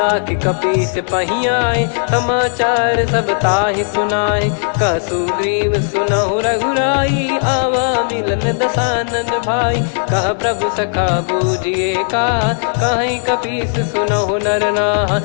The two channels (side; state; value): right; silent; 58 dB below the other